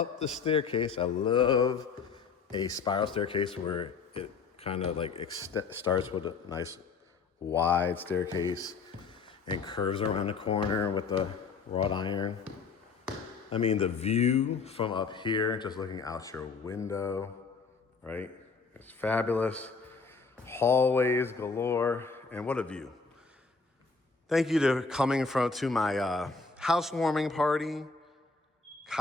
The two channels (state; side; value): quieter; right; 4.8 dB